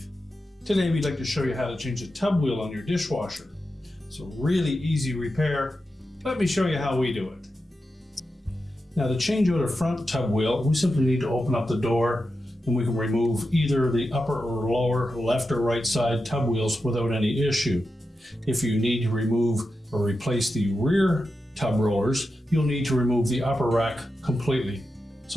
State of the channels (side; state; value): both; normal; correlation 0.89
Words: Today we'd like to show you how to change a tub wheel on your dishwasher. It's a really easy repair. Let me show you how we do it. Now to change out a front tub wheel, we simply need to open up the door and we can remove either the upper or lower left or right side tub wheels without any issue. If you need to remove or replace the rear tub rollers, you'll need to remove the upper rack completely.